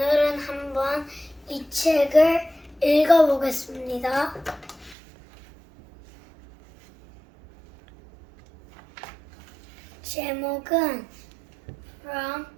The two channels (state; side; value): drops out; left; at 5.0 s